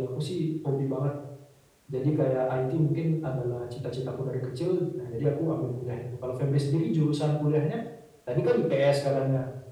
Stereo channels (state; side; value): identical; both; correlation 1.00